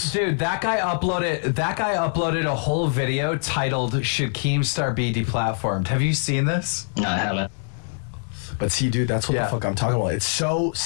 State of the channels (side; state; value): right; silent; 56 dB below the other